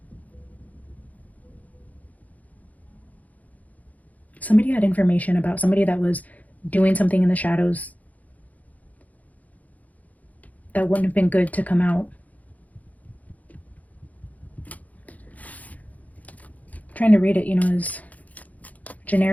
Somebody had information about somebody that was doing something in the shadows that wouldn't have been good to come out. I'm trying to read it, you know, as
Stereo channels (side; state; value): right; late; 0.075 ms